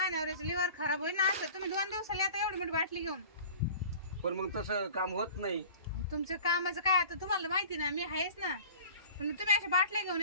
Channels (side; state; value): both; inverted; correlation -0.42